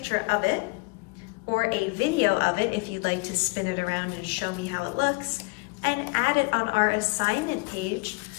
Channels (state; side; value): quieter; right; 27.9 dB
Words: of it or a video of it if you'd like to spin it around and show me how it looks, and add it on our assignment page